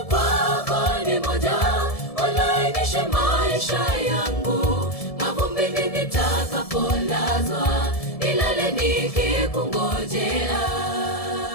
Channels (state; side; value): late; right; 1.7 ms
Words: kwako ni moja, ulainishe maisha yangu mavumbini nitakapolazwa, nilale nikikungojea.